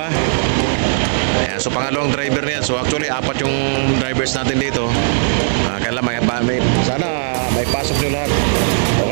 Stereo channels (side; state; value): left; silent; digital silence